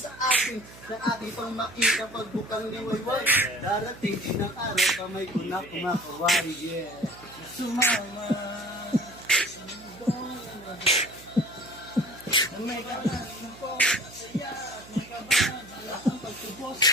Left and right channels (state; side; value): noise; right; hum, 19 dB below the sound